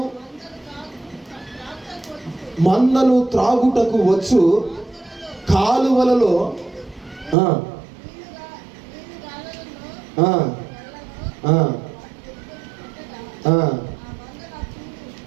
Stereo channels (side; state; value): left; drops out; at 7.4 s